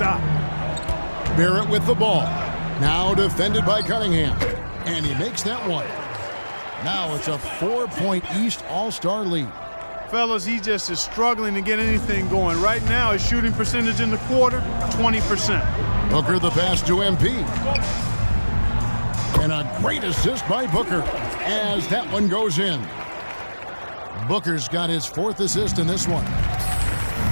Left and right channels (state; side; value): inverted; both; correlation -1.00